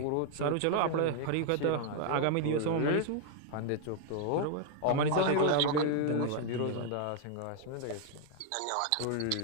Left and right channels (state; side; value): different; both; correlation 0.00